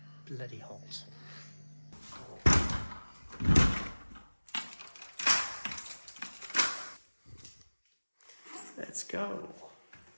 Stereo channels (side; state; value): both; inverted; correlation -1.00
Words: bloody hot. Let's go.